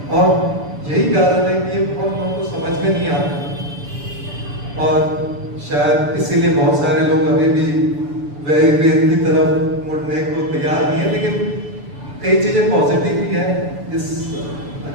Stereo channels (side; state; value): left; late; 6.9 ms